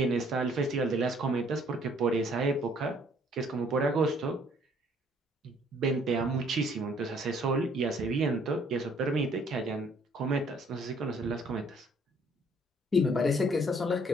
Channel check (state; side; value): normal; both; correlation 0.62